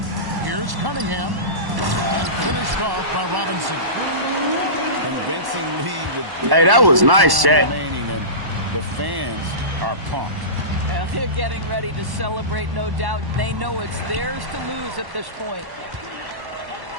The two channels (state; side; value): late; left; 1.1 ms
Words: Here's Cunningham. And finished off by Robinson. Convincing lead with hey, that was nice, Shaq. Remaining, and the fans are pumped. They're getting ready to celebrate, no doubt. They know it's theirs to lose at this point.